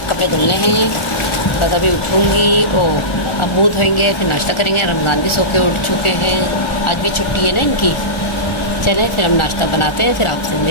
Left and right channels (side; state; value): right; late; 1.4 ms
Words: कपड़े धुलने हैं। बस अभी उठूँगी, अब मुँह धोएंगे, फिर नाश्ता करेंगे। रमज़ान भी सो के उठ चुके हैं, आज भी छुट्टी है ना इनकी। चलें फिर हम नाश्ता बनाते हैं, फिर आपसे